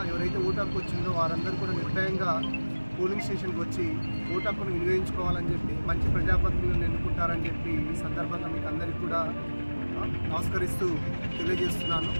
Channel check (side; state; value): both; inverted; correlation -1.00